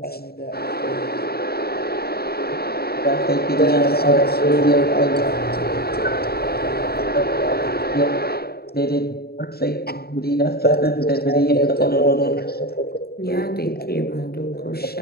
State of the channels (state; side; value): late; right; 0.45 ms